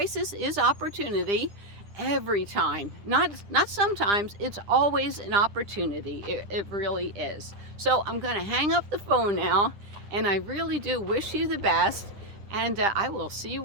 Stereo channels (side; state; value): left; late; 9.9 ms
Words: is opportunity every time. Not sometimes, it's always an opportunity. It really is. So I'm going to hang up the phone now, and I really do wish you the best, and I will see